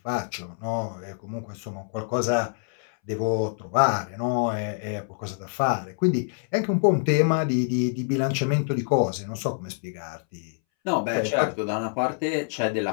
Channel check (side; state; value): right; silent; 61 dB below the other